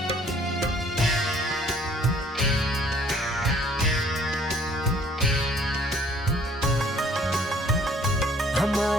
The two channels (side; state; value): both; normal; correlation 0.59